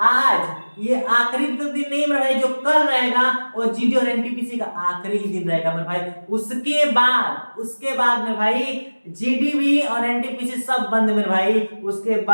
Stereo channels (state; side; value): inverted; both; correlation -1.00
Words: आज ये आखिरी तो दिन नहीं मेरे भाई, जो कल रहेगा वो जीडी और एनटीपीसी का आखिरी ही दिन रहेगा मेरे भाई। उसके बाद मेरे भाई जीडी भी और एनटीपीसी सब बंद मेरे भाई। उसके